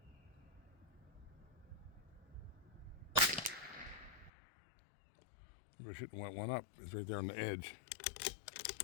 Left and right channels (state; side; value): drops out; right; at 4.3 s